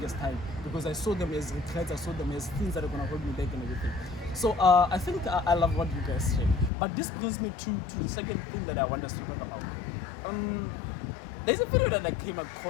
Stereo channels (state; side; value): drops out; right; at 6.7 s